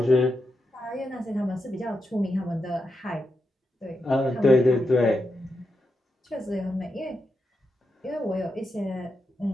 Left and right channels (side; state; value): both; normal; correlation 0.86